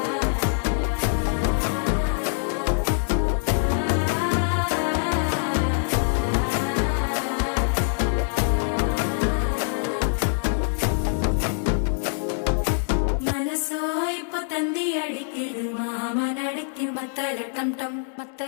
മനസ്സോ ഇപ്പൊ തന്തി അടിക്കുത് മാമനടിക്ക് മത്തള ടം ടം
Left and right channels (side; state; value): right; silent; digital silence